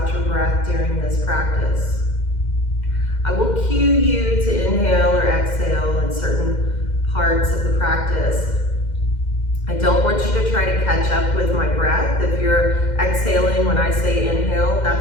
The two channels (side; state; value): right; late; 2.1 ms